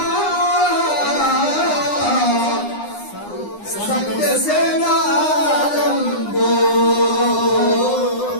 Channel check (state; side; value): late; right; 9.8 ms